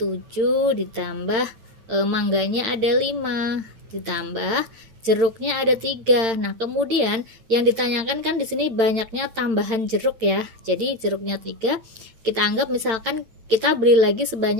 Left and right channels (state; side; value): late; left; 8.9 ms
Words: ditambah mangganya ada 5, ditambah jeruknya ada 3. Nah, kemudian yang ditanyakan kan di sini banyaknya tambahan jeruk ya. Jadi jeruknya 3, kita anggap misalkan kita beli lagi